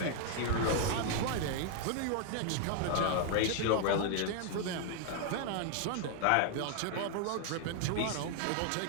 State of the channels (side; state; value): both; different; correlation 0.00